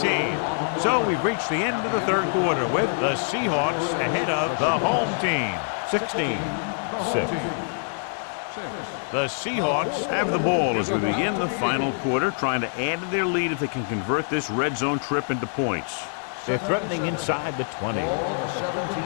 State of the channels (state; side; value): silent; right; digital silence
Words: So we've reached the end of the third quarter with the Seahawks ahead of the home team, 16-6. The Seahawks have the ball as we begin the final quarter, trying to add to their lead if they can convert this red zone trip into points. They're threatening inside the 20.